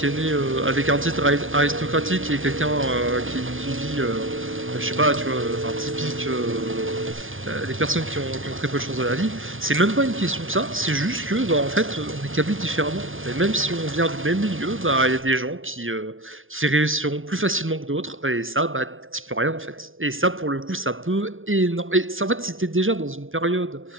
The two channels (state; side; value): late; left; 0.58 ms